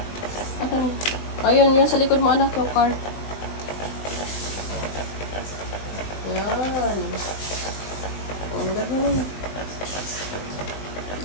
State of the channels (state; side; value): late; right; 20 ms